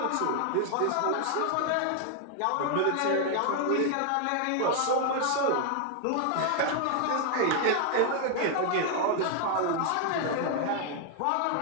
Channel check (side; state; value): both; different; correlation 0.00